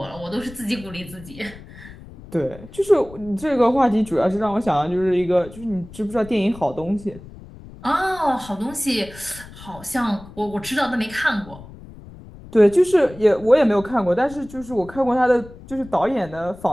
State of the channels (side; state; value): left; noise; rumble, 18 dB below the sound